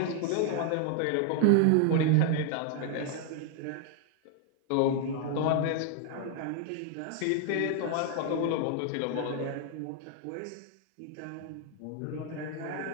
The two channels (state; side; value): different; both; correlation 0.00